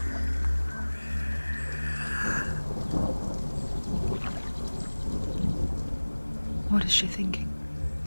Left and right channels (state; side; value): inverted; both; correlation -1.00